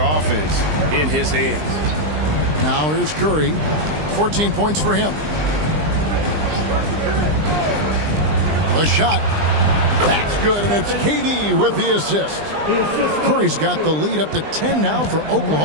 offense in his hands. Now here's Curry, 14 points for him. The shot, that's good, and it's KD with the assist. Curry's got the lead up to 10 now for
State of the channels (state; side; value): late; left; 20 ms